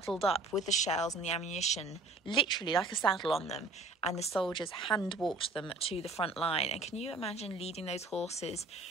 up with the shells and the ammunition, literally like a saddle on them, and the soldiers hand walked them to the front line. And can you imagine leading those horses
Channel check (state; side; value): quieter; left; 3.4 dB